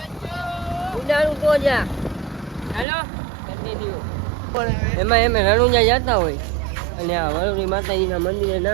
ઉડાડું તો જા હેલો કન્ટિન્યુ એમ રણુજા જતા હોય અને આ વરુણી માતાજીના મંદિરે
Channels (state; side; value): drops out; left; at 2.9 s